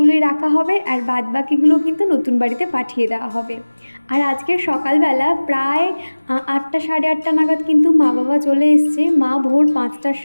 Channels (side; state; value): both; inverted; correlation -1.00